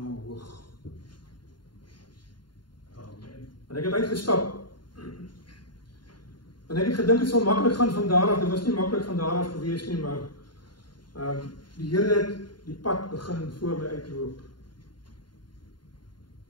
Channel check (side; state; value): right; late; 0.71 ms